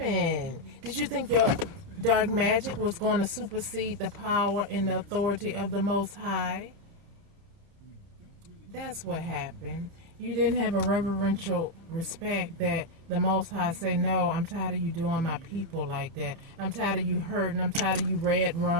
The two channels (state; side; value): late; left; 29 ms